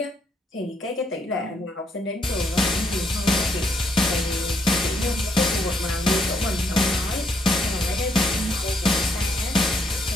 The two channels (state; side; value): normal; both; correlation 0.73